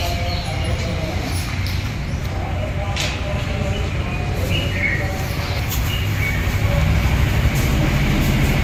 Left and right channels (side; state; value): both; identical; correlation 1.00